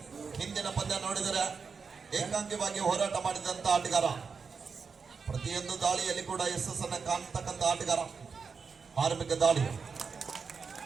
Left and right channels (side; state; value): left; quieter; 5.4 dB